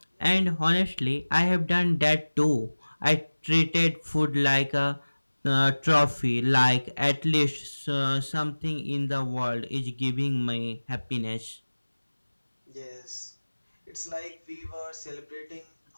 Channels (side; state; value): both; inverted; correlation -1.00